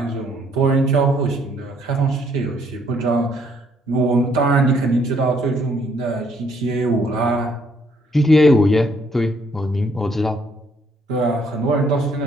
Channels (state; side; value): normal; both; correlation 0.67